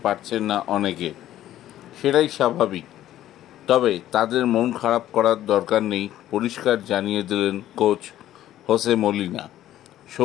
পারছেন না অনেকে। সেটাই স্বাভাবিক। তবে তাদের মন খারাপ করার দরকার নেই, পরিষ্কার জানিয়ে দিলেন কোচ হোসে মলিনা।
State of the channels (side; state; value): right; quieter; 12.9 dB